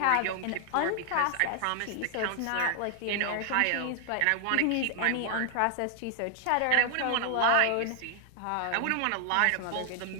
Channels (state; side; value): different; both; correlation 0.00